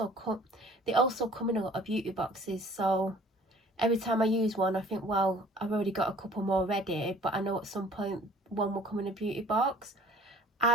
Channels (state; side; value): normal; both; correlation 0.52